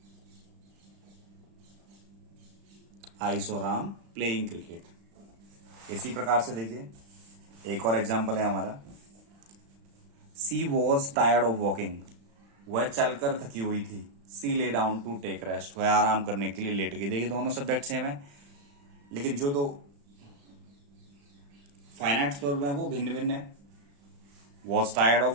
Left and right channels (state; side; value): late; left; 35 ms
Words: I saw Ram playing cricket. इसी प्रकार से देखिए एक और एग्जाम्पल है हमारा। सी वॉज टायर्ड ऑफ वॉकिंग, वह चलकर थकी हुई थी। सी lay down to take rest, वह आराम करने के लिए लेट गई। देखिए दोनों सब्जेक्ट सेम है, लेकिन जो दो फाइनाइट वर्ब है वो भिन्न भिन्न है। वॉज टायर्ड ऑफ